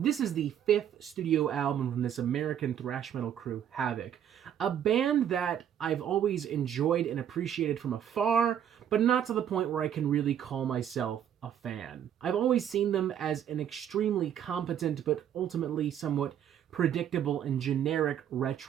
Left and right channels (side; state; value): left; quieter; 9.6 dB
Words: is the 5th studio album from this American thrash metal crew, Havok, a band that I've always enjoyed and appreciated from afar, but not to the point where I can really call myself a fan. I've always seen them as an extremely competent but ultimately somewhat predictable and generic